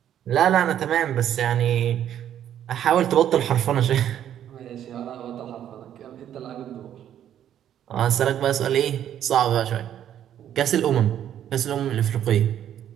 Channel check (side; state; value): left; quieter; 10.5 dB